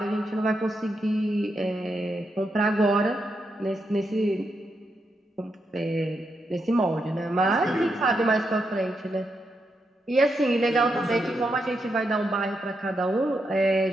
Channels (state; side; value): normal; both; correlation 0.83